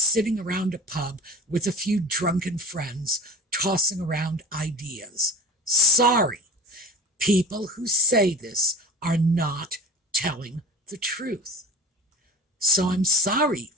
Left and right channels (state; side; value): normal; both; correlation 0.35